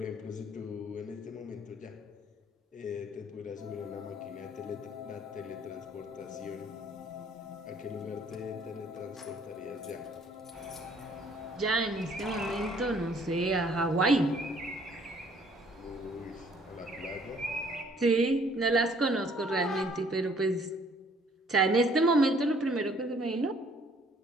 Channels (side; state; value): both; normal; correlation 0.60